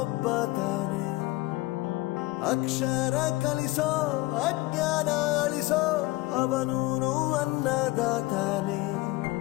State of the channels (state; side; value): quieter; right; 20.4 dB